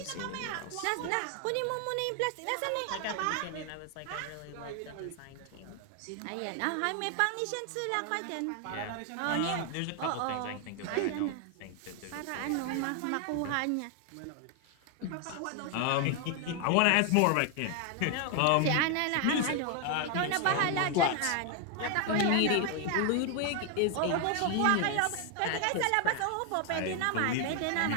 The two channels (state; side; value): different; both; correlation 0.00